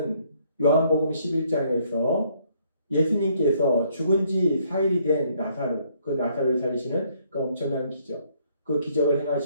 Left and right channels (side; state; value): both; inverted; correlation -0.67